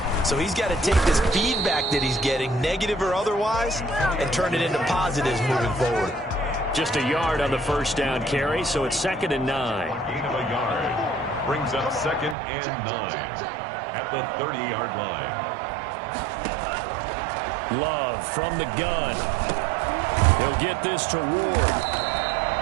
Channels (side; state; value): left; drops out; at 12.4 s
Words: So he's got to take this feedback that he's getting, negative or otherwise, and turn it into positives moving forward. Just a yard on the 1st down carry, so it's 2nd and 9. Gain of a yard. Brings up 2nd and 9 at the 30-yard line. Love from the gun. He'll get this to Ward.